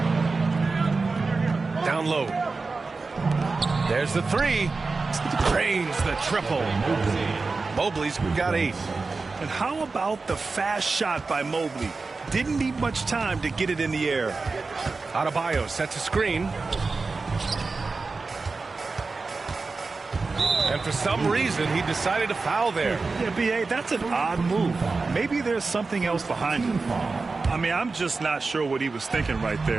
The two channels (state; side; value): quieter; left; 4.0 dB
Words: Down low. There's the 3. Drains the triple. Mobley's got 8. And how about the fast shot by Mobley? Didn't need much time to get it in the air. Adebayo sets a screen. And for some reason, he decided to foul there. Yeah, B.A., that's an odd move. Maybe there's something else behind it. I mean, I'm just not sure what he was thinking right